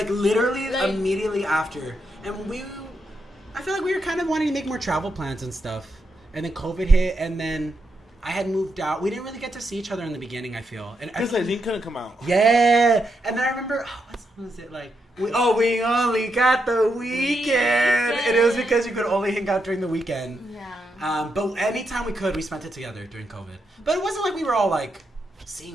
immediately after. And I feel like we were kind of wanting to make more travel plans and stuff. And then COVID hit, and then I had moved out. We didn't really get to see each other in the beginning, I feel. Because Eileen couldn't come out. Yeah. And then I remember, what song was it? We only got the weekend. And it was because you could only hang out during the weekend. Yeah. But anytime we could, we spent it together during COVID. But it wasn't like we were all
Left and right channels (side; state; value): both; normal; correlation 0.83